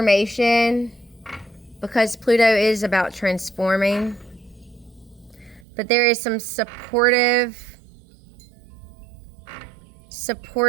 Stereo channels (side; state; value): left; drops out; at 5.7 s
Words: because Pluto is about transforming. But there is some supportive